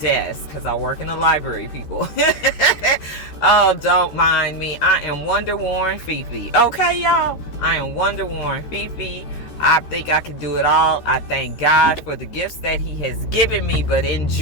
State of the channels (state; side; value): late; right; 13 ms